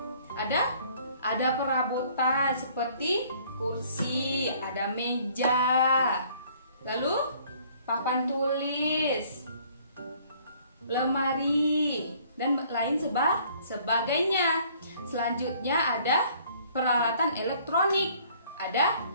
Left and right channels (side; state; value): both; inverted; correlation -0.58